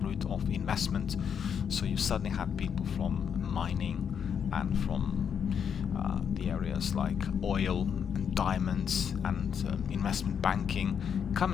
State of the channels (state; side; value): quieter; right; 7.6 dB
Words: route of investment. So you suddenly had people from mining and from the areas like oil and diamonds and investment banking,